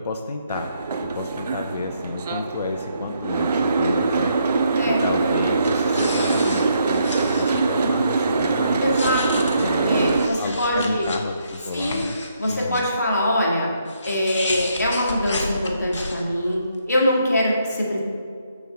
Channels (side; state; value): both; inverted; correlation -0.73